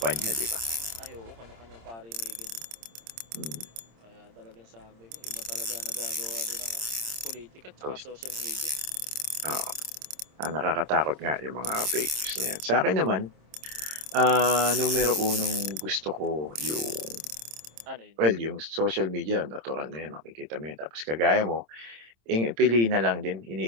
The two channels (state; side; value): late; left; 26 ms